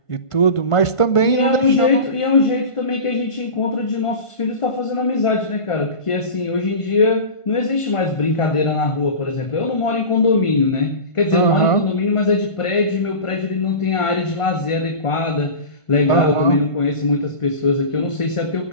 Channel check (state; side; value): late; right; 1.5 ms